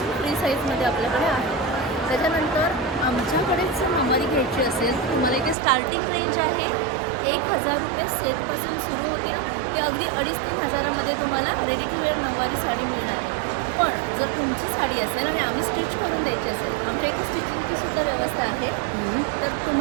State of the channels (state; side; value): drops out; left; at 5.6 s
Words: फ्री साईजमध्ये आपल्याकडे आहे. त्याच्यानंतर आमच्याकडेच नऊवारी घ्यायची असेल तर तुम्हाला इथे स्टार्टिंग रेंज आहे 1000 रुपये सेटपासून सुरू होते ते अगदी 2,500-3 हजारामध्ये तुम्हाला रेडी टू वेअर नऊवारी साडी मिळणार आहे. पण जर तुमची साडी असेल आणि आम्ही स्टिच करून द्यायची असेल, आमच्या इथे स्टिचिंगची सुद्धा व्यवस्था आहे. तर